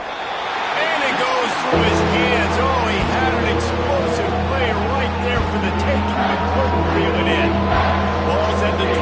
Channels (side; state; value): both; identical; correlation 1.00